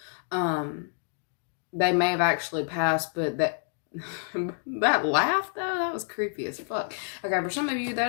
they may have actually passed, but that laugh, though, that was creepy as fuck. Okay, for some of you, that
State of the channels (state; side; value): silent; right; digital silence